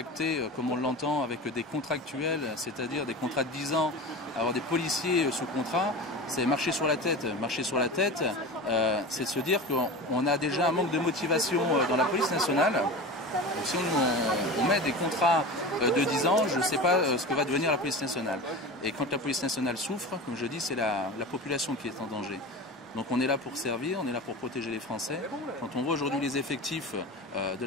comme on l'entend, avec des contractuels, c'est-à-dire des contrats de 10 ans, avoir des policiers sous contrat, c'est marcher sur la tête. Marcher sur la tête, c'est se dire qu'on a déjà un manque de motivation dans la police nationale. Donc si on met des contrats de 10 ans, je ne sais pas ce que va devenir la police nationale. Et quand la police nationale souffre, comme je dis, c'est la population qui est en danger. Donc on est là pour servir, on est là pour protéger les Français. Quand on voit aujourd'hui les effectifs de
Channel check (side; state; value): both; normal; correlation 0.30